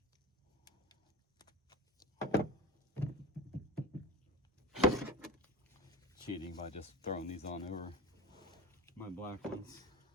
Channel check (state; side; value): normal; both; correlation 0.30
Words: Cheating by just throwing these on over my black ones.